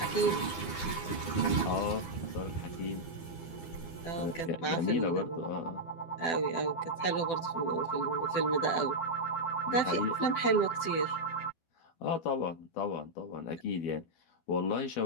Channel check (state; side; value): late; right; 12 ms